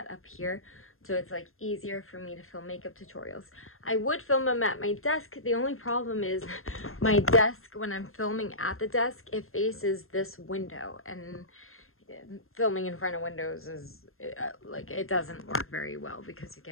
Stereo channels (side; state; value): right; late; 0.61 ms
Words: up here so it's like easier for me to film makeup tutorials. I would film them at my desk. The only problem is my desk, when I'm filming at the desk, it faces this window, and filming in front of windows is like, it doesn't work very well because you